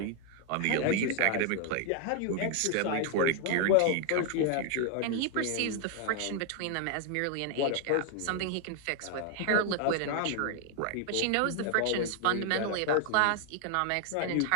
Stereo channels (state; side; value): different; both; correlation 0.00